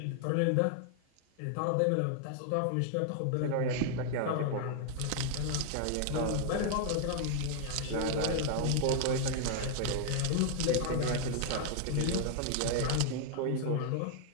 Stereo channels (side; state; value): both; different; correlation 0.00